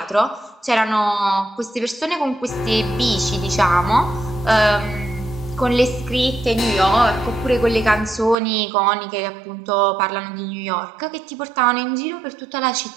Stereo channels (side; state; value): left; drops out; at 8.3 s